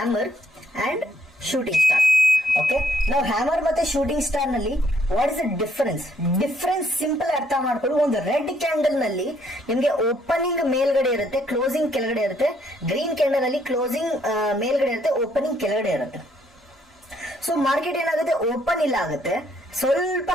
and shooting star. Okay, ನಾವು ಹ್ಯಾಮರ್ ಮತ್ತೆ ಶೂಟಿಂಗ್ ಸ್ಟಾರ್ ನಲ್ಲಿ what is the difference simple ಅರ್ಥ ಮಾಡ್ಕೊಳ್ಳಿ. ಒಂದು ರೆಡ್ ಕ್ಯಾಂಡಲ್ ನಲ್ಲಿ ನಿಮ್ಗೆ ಓಪನಿಂಗ್ ಮೇಲ್ಗಡೆ ಇರುತ್ತೆ, ಕ್ಲೋಸಿಂಗ್ ಕೆಳಗಡೆ ಇರುತ್ತೆ. ಗ್ರೀನ್ ಕ್ಯಾಂಡಲ್ ಅಲ್ಲಿ ಕ್ಲೋಸಿಂಗ್ ಮೇಲ್ಗಡೆ ಇರುತ್ತೆ, ಓಪನಿಂಗ್ ಕೆಳಗಡೆ ಇರುತ್ತೆ. ಸೊ ಮಾರ್ಕೆಟ್ ಏನಾಗುತ್ತೆ, ಓಪನ್ ಇಲ್ಲ ಆಗುತ್ತೆ, ಸ್ವಲ್ಪ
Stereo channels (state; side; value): normal; both; correlation 0.68